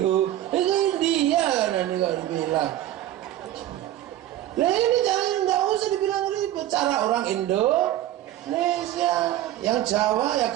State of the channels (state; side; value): quieter; left; 13.4 dB